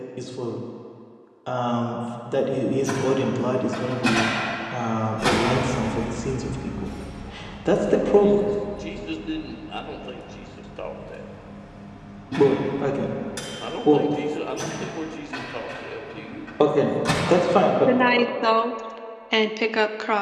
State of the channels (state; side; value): identical; both; correlation 1.00